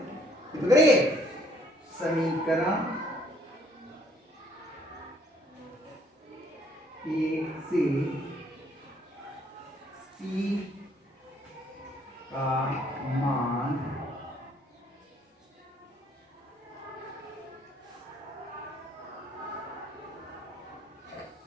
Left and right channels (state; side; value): normal; both; correlation 0.63